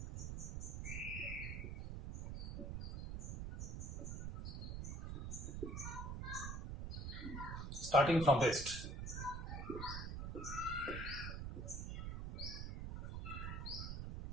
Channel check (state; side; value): noise; right; rumble, 4 dB below the sound